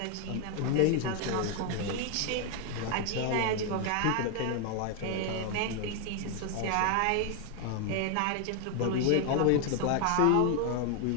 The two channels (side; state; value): both; different; correlation 0.00